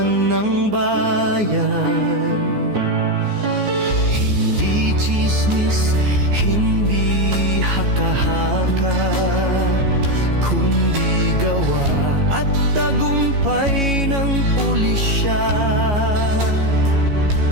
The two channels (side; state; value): left; late; 14 ms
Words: ng bayan. Hindi tsismis, hindi haka-haka, kundi gawa at tagumpay ng pulisya.